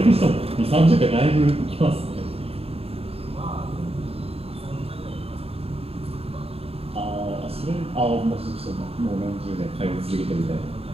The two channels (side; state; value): left; late; 0.28 ms